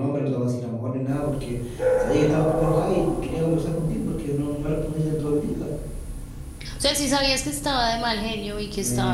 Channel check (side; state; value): both; identical; correlation 1.00